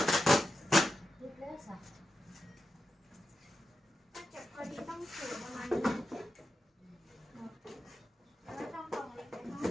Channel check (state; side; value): normal; both; correlation 0.89